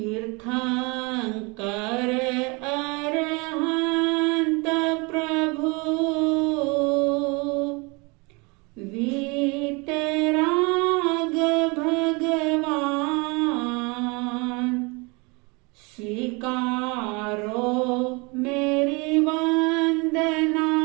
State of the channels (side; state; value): left; quieter; 28.5 dB